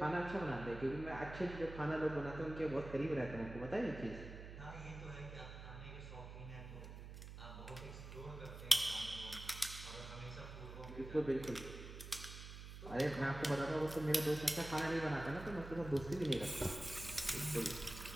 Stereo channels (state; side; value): noise; right; hum, 11 dB below the sound